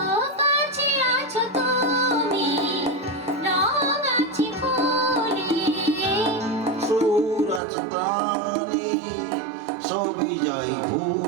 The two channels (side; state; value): left; drops out; at 7.6 s